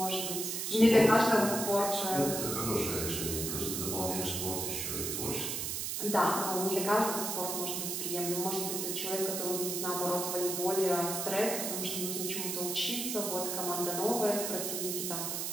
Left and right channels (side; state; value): right; noise; hiss, 2 dB below the sound